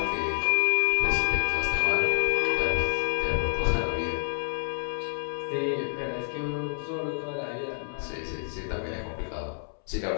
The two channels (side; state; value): right; silent; 59 dB below the other